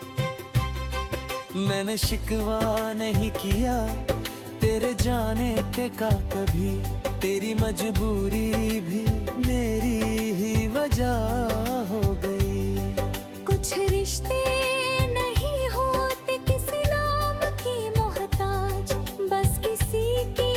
मैंने शिकवा नहीं किया तेरे जाने के का कभी, तेरी मजबूरी भी मेरी ही वजह हो गई। कुछ रिश्ते नहीं होते किसी नाम की मोहताज, बस किसी की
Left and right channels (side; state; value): both; identical; correlation 1.00